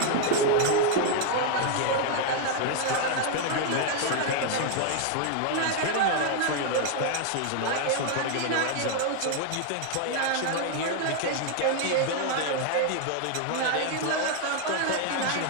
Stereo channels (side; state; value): both; different; correlation 0.00